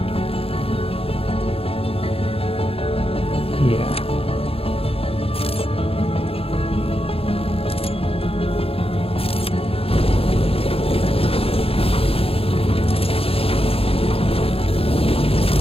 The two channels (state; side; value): late; right; 0.28 ms